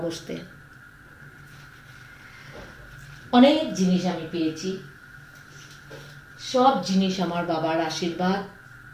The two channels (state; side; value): identical; both; correlation 1.00